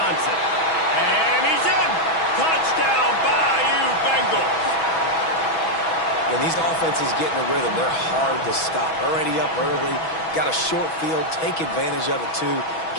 And he's in. Touchdown, Bayou Bengals. When these offenses get in a rhythm, they're hard to stop. Already up early, got a short field, take advantage of it too,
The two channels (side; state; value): right; late; 6.1 ms